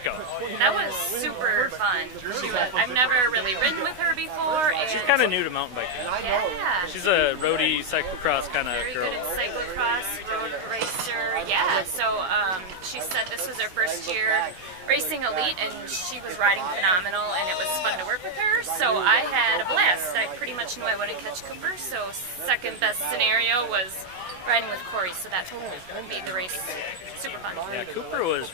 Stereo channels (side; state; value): left; late; 16 ms